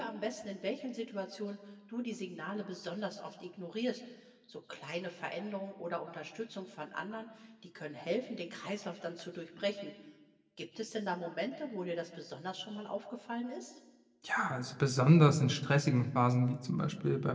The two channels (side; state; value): both; identical; correlation 1.00